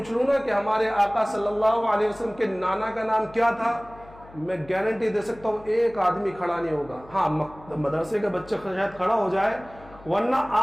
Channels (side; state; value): left; noise; hum, 22 dB below the sound